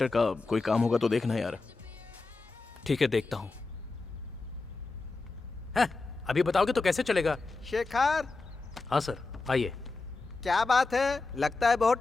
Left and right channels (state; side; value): quieter; right; 3.7 dB